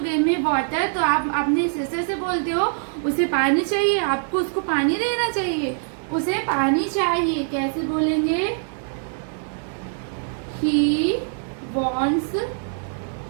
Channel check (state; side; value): silent; left; digital silence